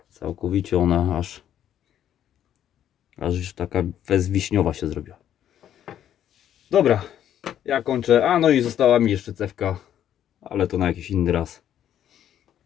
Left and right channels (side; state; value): right; quieter; 10.5 dB